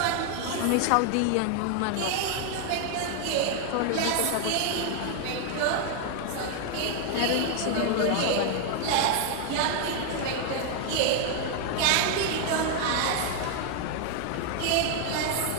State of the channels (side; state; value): both; different; correlation 0.00